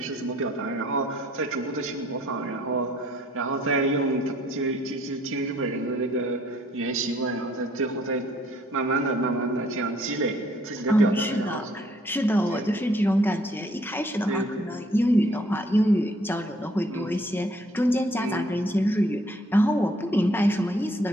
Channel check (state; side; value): normal; both; correlation 0.62